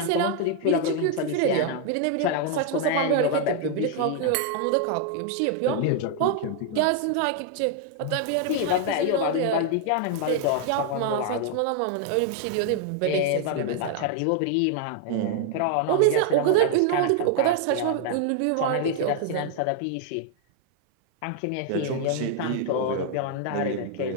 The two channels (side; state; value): both; different; correlation 0.00